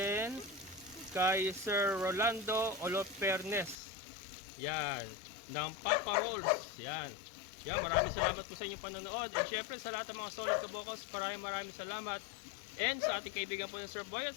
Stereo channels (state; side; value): drops out; right; at 3.8 s